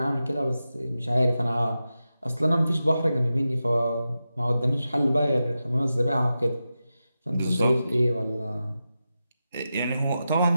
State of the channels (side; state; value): both; inverted; correlation -0.91